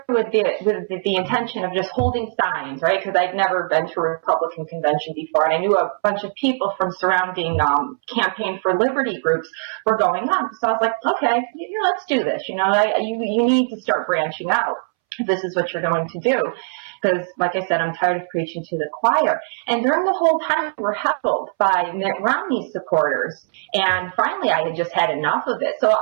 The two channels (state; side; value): silent; left; 65 dB below the other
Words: with the intention of just holding signs, right? Because I'd never been to a Republican convention before, and I knew a bunch of people from surrounding Campaign for Liberty groups were going on. So I was like, okay, let's do this. You need to start branching out. if this is what you're going to do. Because, like I said, I'm tired of preaching to the choir. And during the whole time, we were heckled by Mitt Romney supporters. And finally, I had just had enough of it. So